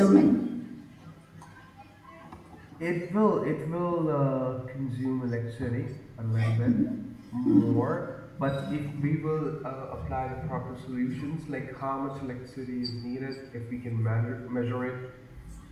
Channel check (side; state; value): both; identical; correlation 1.00